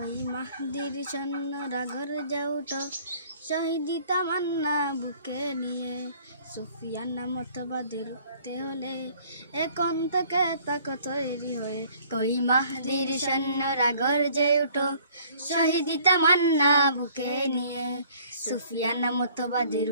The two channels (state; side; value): inverted; both; correlation -0.56